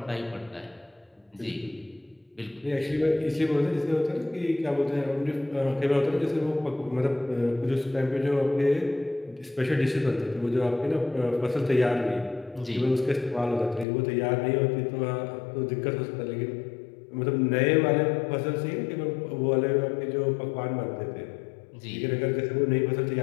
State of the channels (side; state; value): right; drops out; at 13.9 s